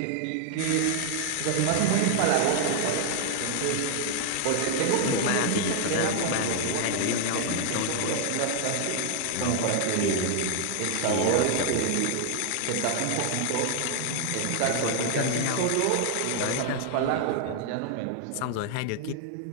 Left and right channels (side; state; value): both; different; correlation 0.00